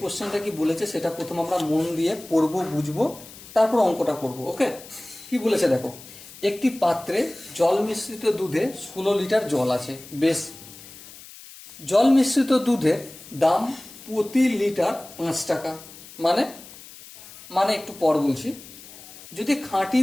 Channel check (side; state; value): left; noise; hiss, 18 dB below the sound